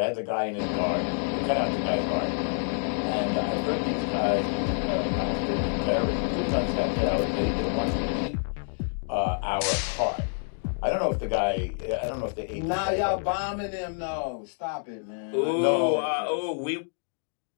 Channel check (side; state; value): right; silent; 60 dB below the other